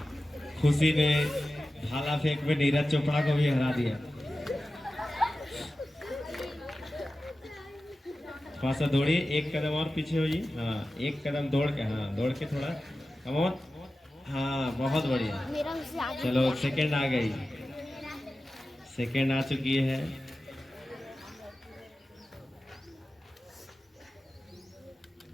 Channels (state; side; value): normal; both; correlation 0.94